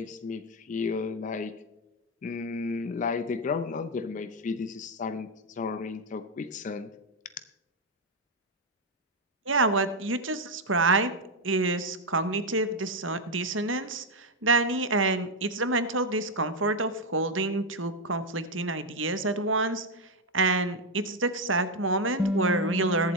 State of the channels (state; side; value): normal; both; correlation 0.03